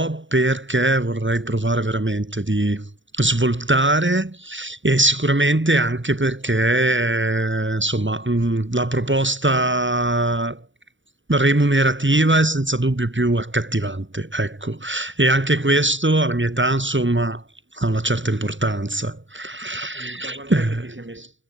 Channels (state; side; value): late; left; 0.55 ms